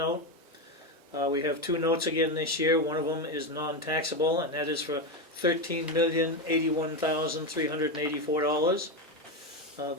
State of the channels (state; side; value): normal; both; correlation 0.12